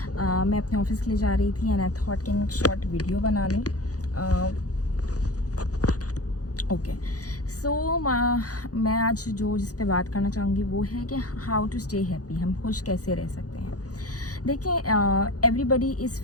मैं अपने ऑफिस के लिए जा रही थी एंड आई थॉट कि एक शॉर्ट वीडियो बना लूँ। ओके सो मैं आज जिस पे बात करना चाहूँगी वो है कि हाउ टू स्टे हैप्पी, हम खुश कैसे रह सकते हैं। देखें, everybody is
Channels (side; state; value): right; late; 0.67 ms